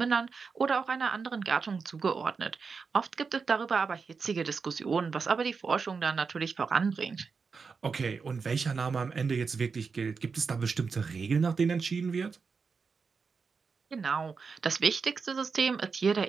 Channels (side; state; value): left; quieter; 5.1 dB